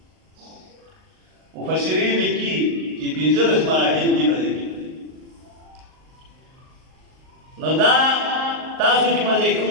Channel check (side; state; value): left; late; 39 ms